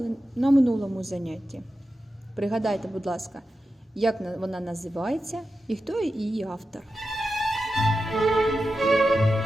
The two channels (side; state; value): both; normal; correlation 0.91